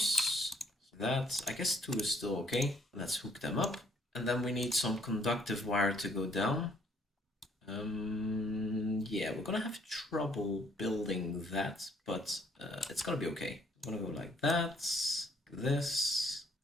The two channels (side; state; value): both; normal; correlation 0.65